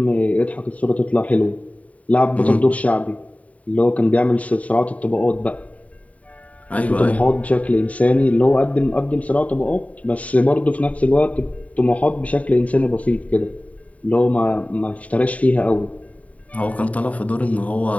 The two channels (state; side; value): late; right; 0.069 ms